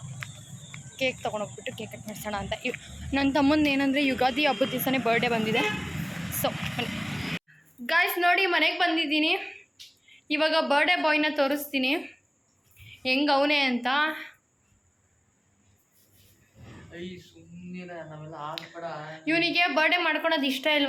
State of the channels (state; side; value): identical; both; correlation 1.00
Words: ಕೇಕ್ ತೊಗೊಂಡೋಗ್ಬಿಟ್ಟು ಕೇಕ್ ಕಟ್ ಮಾಡಿಸೋಣ ಅಂತ. ನನ್ನ ತಮ್ಮಂದು ಏನಂದರೆ ಯುಗಾದಿ ಹಬ್ಬದ ದಿವಸನೇ ಬರ್ಡೇ ಬಂದಿದೆ. ಸೊ ಗಾಯ್ಸ್ ನೋಡಿ, ಮನೆಗೆ ಬಂದಿದ್ದೀನಿ. ಇವಾಗ ಬರ್ಡೇ ಬಾಯ್ನ ತೋರಿಸ್ತೀನಿ ಹೆಂಗೆ ಅವನೇ ಅಂತ. ಇವನಿಗೆ ಬರ್ಡೇ ಮಾಡ್ಕೊಳೋದು ಇಷ್ಟ